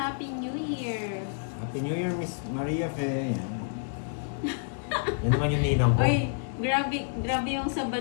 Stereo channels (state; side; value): silent; right; digital silence